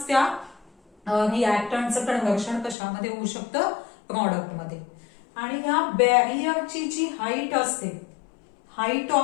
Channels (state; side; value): drops out; right; at 2.8 s